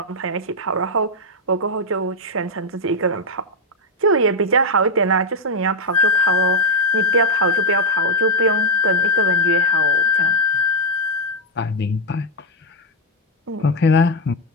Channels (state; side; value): normal; both; correlation 0.03